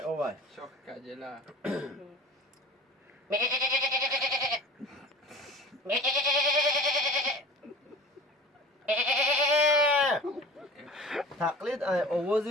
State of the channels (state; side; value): normal; both; correlation 0.39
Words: آوای شاک کجلا تقلید ای